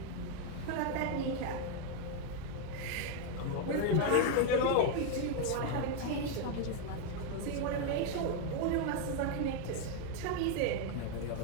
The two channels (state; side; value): different; both; correlation 0.01